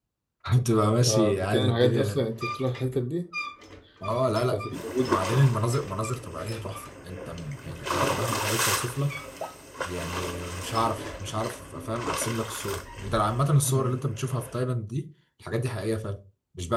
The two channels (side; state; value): both; identical; correlation 1.00